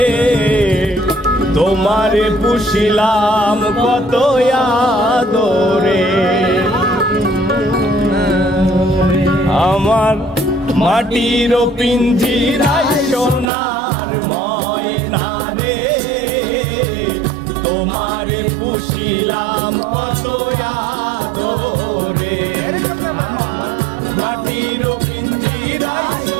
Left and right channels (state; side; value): drops out; left; at 13.5 s